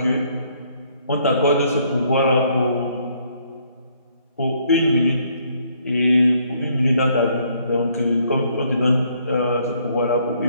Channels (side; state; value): both; inverted; correlation -0.67